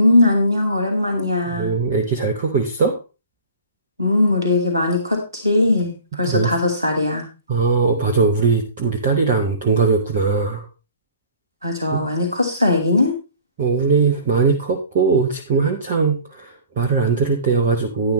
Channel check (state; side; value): inverted; both; correlation -0.47